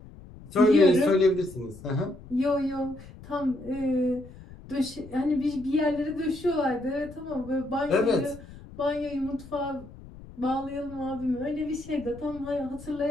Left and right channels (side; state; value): left; noise; rumble, 18 dB below the sound